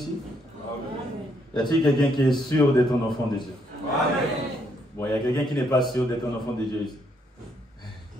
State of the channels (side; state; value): both; normal; correlation 0.73